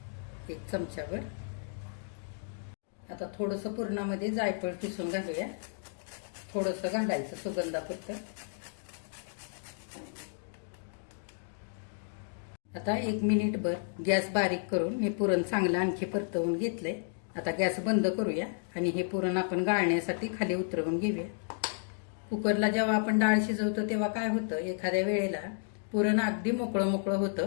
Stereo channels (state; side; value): silent; right; digital silence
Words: 1 चमचाभर. आता थोडंसं पुरणामध्ये जायफळ किसून घालूया. थोडंसं घालायचं सुगंधापुरतं. आता 1 मिनिटभर गॅस बारीक करून मी पुरण चांगलं आणखी परतवून घेतलंय. आता गॅस बंद करूया आणि हे पुरण आपण गाळण्यासाठी खाली उतरवून घेऊया. कुकरला जेव्हा आपण डाळ शिजवतो तेव्हा काय होतं एखाद्या वेळेला पुरण अगदी मोकळं मोकळं